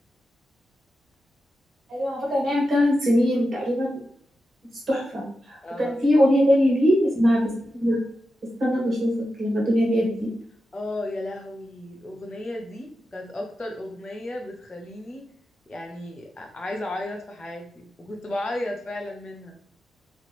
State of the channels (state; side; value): normal; both; correlation 0.90